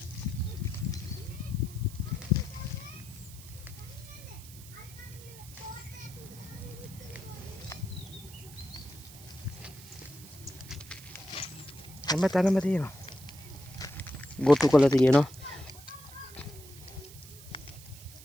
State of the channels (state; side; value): noise; right; hiss, 17 dB below the sound